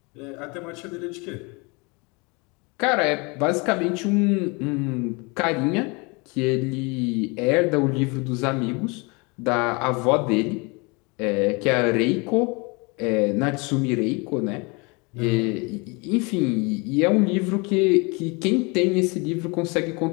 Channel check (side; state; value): right; quieter; 29.0 dB